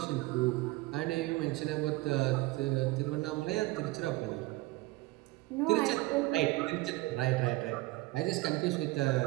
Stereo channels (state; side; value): quieter; left; 20.3 dB